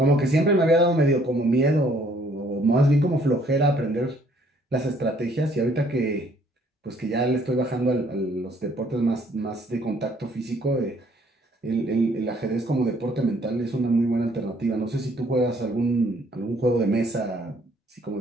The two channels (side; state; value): both; normal; correlation 0.63